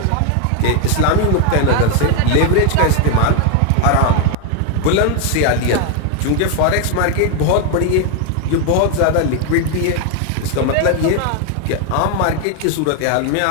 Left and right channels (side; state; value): both; different; correlation 0.01